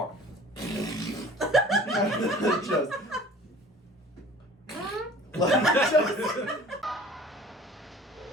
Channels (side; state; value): both; normal; correlation 0.47